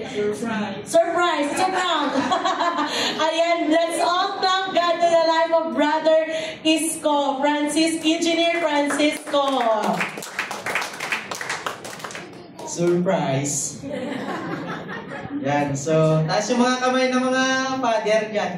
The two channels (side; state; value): both; identical; correlation 1.00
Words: Surprise! Surprise! Surprise! Ayan, let's all thank God to the life of Brother Isko, Engineer Francisco. Surprise! Yan, so, taas yung mga kamay ng mga father